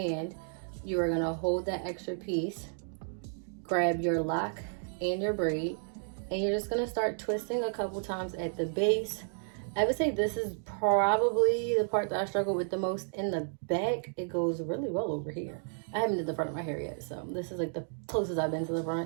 you are gonna hold that extra piece, grab your lock and your braid, and you're just gonna start twisting a couple times at the base. I would say this is probably the part that I struggle with the most. In the back, it goes really well over here. I haven't did the front of my hair yet, so this is like the closest I've been to the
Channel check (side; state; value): left; silent; digital silence